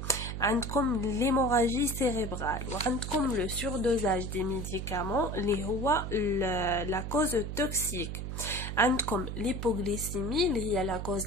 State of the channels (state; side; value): noise; right; hum, 5 dB below the sound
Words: عندكم l'hémorragie cérébrale وعندكم le surdosage des médicaments اللي هو la cause toxique. عندكم l'hypoglycémie اللي هي la cause